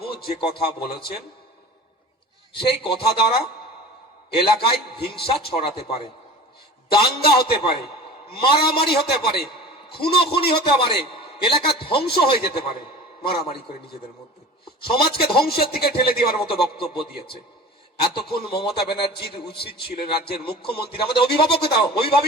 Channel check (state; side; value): normal; both; correlation 0.38